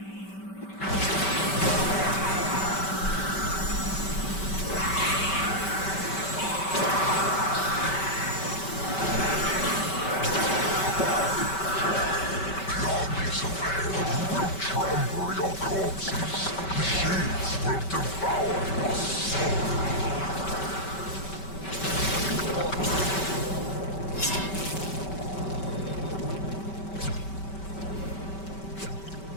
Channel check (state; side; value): late; right; 5.2 ms